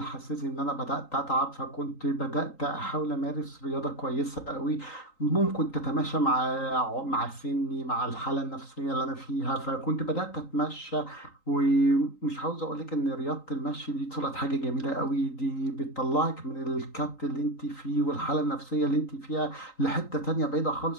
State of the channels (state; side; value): late; right; 3.9 ms